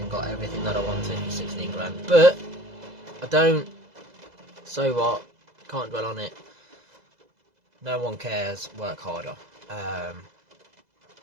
got everything that I wanted for 16 grand. But I don't. So what? Can't dwell on it. No one cares. Work harder.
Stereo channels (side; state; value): left; late; 2.0 ms